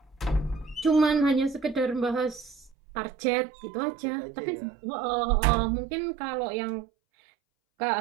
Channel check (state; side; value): drops out; left; at 2.8 s